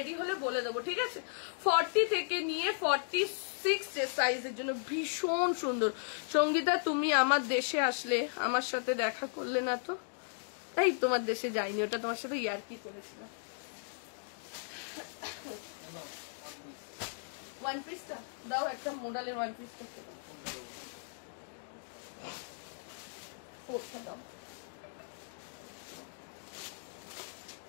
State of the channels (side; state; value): right; silent; digital silence